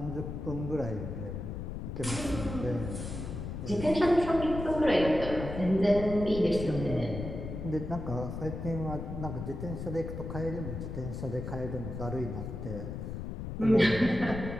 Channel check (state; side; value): noise; left; rumble, 6 dB below the sound